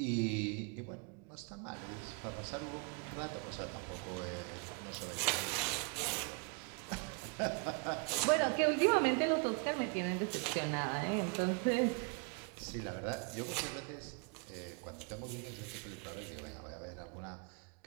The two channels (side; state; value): left; quieter; 34.2 dB